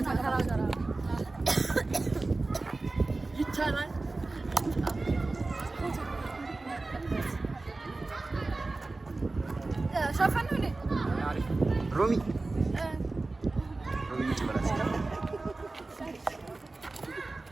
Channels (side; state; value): left; quieter; 3.3 dB